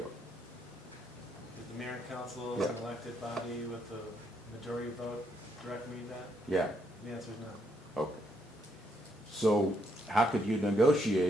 the mayor and council, Yeah. as an elected body with a majority vote, direct me that? Yeah, The answer is no. okay. So how could you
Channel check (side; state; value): both; normal; correlation 0.74